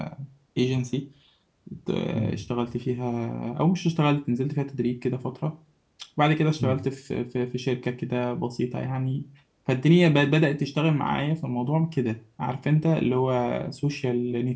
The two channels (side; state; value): both; identical; correlation 1.00